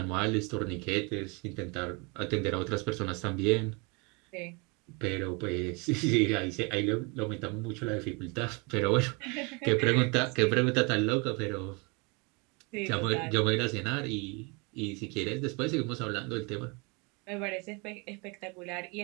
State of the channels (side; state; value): left; quieter; 30.5 dB